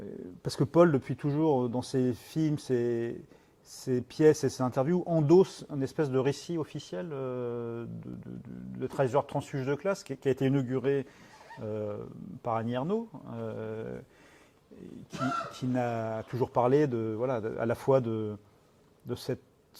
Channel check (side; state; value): both; identical; correlation 1.00